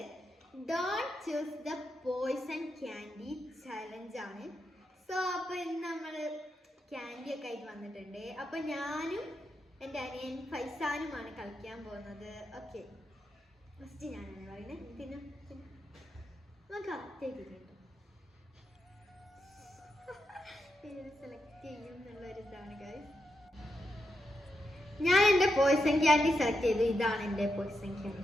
Don't choose the poison candy challenge ആണ്. സോ അപ്പോൾ ഇന്ന് നമ്മൾ ക്യാൻഡി ഒക്കെ ആയിട്ട് വന്നിട്ടുണ്ട്. അപ്പോൾ ഞാനും എൻ്റെ അനിയൻ ഫൈസാനുമാണ് കളിക്കാൻ പോകുന്നത്. ഓക്കെ, ഫസ്റ്റ് ഞാനാണ് പറയുന്നത്. പിന്നെ നമുക്ക് അത്തേക്ക് കേട്ടോ സെലക്ട് ചെയ്യും എന്നുള്ളൊരിതാണ് ഗൈസ്. ഞാൻ എൻ്റെ പോയ്സൺ ക്യാൻഡി സെലക്ട് ചെയ്തു. ഇതാണ് എൻ്റെ പോയ്സൺ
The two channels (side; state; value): both; normal; correlation 0.85